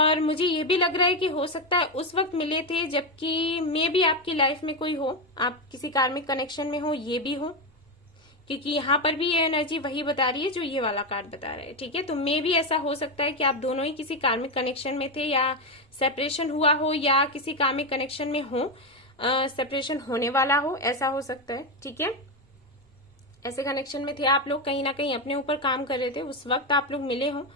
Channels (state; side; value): normal; both; correlation 0.10